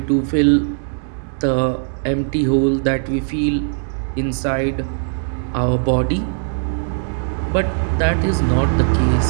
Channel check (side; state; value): left; silent; 66 dB below the other